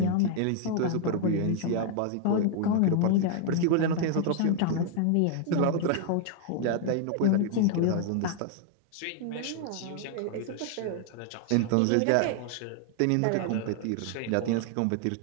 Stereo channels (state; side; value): different; both; correlation 0.00